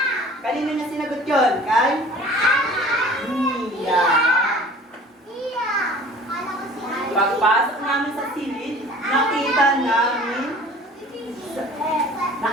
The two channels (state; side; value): normal; both; correlation 0.46